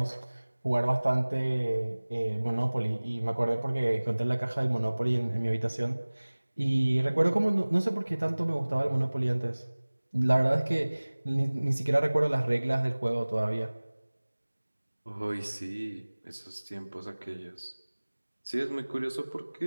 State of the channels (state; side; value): inverted; both; correlation -1.00